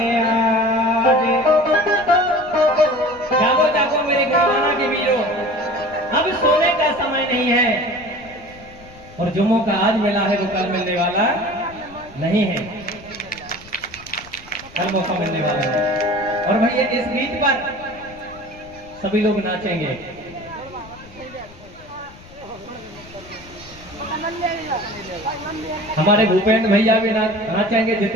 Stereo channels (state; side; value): noise; left; rumble, 21 dB below the sound